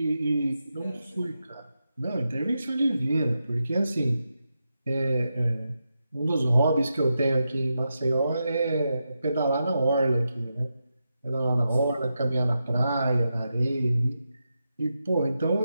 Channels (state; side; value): inverted; both; correlation -0.88